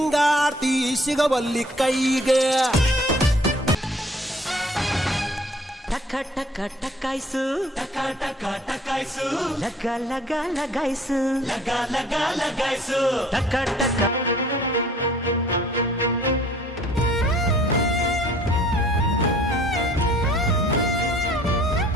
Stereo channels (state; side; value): normal; both; correlation 0.55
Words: ಸಿಗವಲ್ಲಿ ಕೈಗೆ. ಟಕ ಟಕ ಟಕಾಯ್ಸು, ಟಕ ಟಕ ಟಕಾಯ್ಸು, ಲಗ ಲಗ ಲಗಾಯ್ಸು, ಲಗ ಲಗ ಲಗಾಯ್ಸು, ಟಕ ಟಕ.